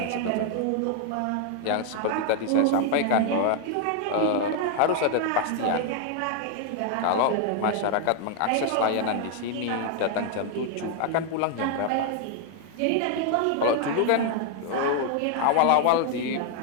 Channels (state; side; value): different; both; correlation 0.00